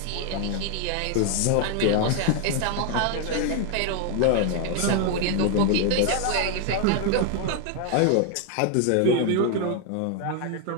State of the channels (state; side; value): different; both; correlation 0.01